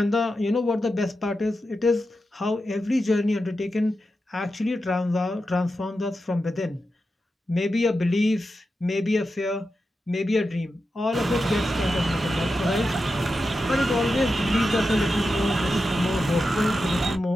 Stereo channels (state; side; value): normal; both; correlation 0.90